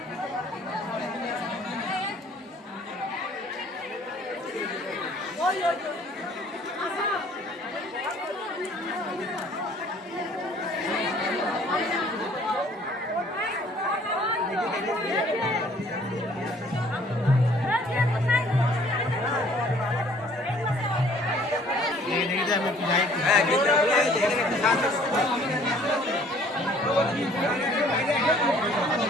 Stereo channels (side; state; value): both; normal; correlation 0.57